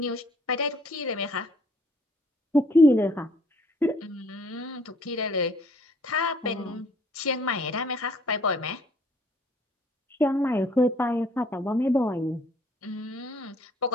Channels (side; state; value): both; normal; correlation 0.60